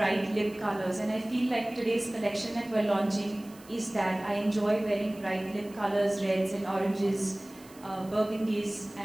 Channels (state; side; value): noise; right; hiss, 23 dB below the sound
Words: lip colors, and I feel like today's collection that we're launching is that I enjoy wearing bright lip colors, reds and oranges, burgundies,